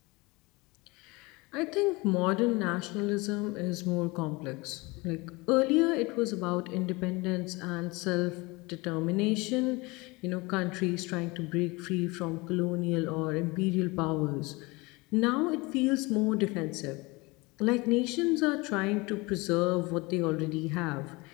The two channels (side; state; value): right; quieter; 24.6 dB